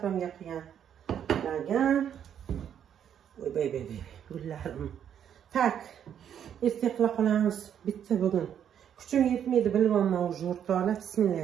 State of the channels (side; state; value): left; quieter; 9.1 dB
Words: qilgan lagan. Voy bey, gullarim. Tak, erta qila qolamiz. Bitta bugun. Kuchim yetmaydi, bilmayman o'zi o'rtoqlar.